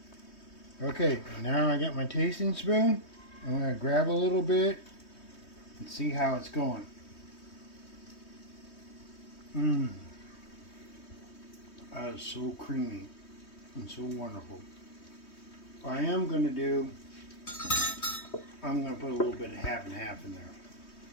Okay, now I got my tasting spoon. I'm going to grab a little bit and see how it's going. That is so creamy and so wonderful. What I am going to do, I'm going to put a little bit of half and half in there.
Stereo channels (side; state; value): right; late; 3.2 ms